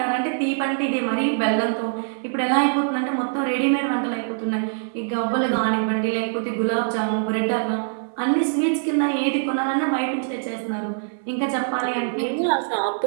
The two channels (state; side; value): silent; left; 57 dB below the other